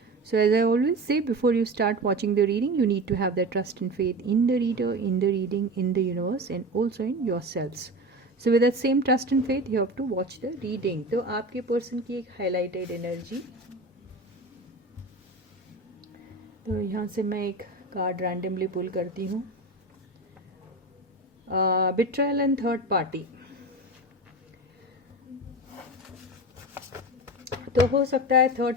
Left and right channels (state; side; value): normal; both; correlation 0.28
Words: So as I always say, before you start watching the reading, you need to have the trust and faith in the reader, in the reading, in the universe, and also in yourselves. So with that same trust and faith, you have to watch the reading. तो आपके person की एक highlighted energy, तो यहाँ से मैं एक card randomly पुल करती हूँ. बिट्रायल एंड थर्ड पार्टी. तो हो सकता है